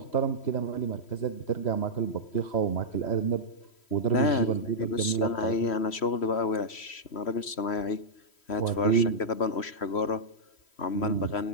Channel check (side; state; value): right; late; 3.1 ms